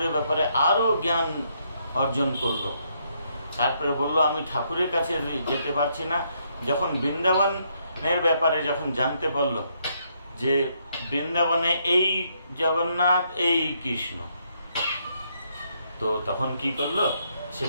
ব্যাপারে আরো জ্ঞান অর্জন করলো। তারপরে বলল আমি ঠাকুরের কাছে যেতে পারছি না। যখন বৃন্দাবনের ব্যাপারে যখন জানতে পারলো যে বৃন্দাবনে এই জগন্নাথ এই কৃষ্ণ, তো তখন কি করলো, সে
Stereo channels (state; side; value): inverted; both; correlation -0.74